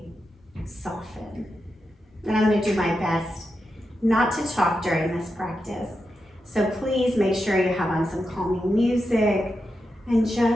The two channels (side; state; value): both; normal; correlation 0.88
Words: soften. And I'm gonna do my best not to talk during this practice. So please make sure you have on some calming music and